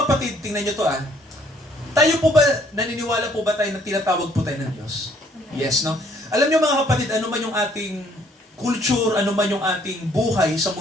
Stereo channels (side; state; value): both; normal; correlation 0.63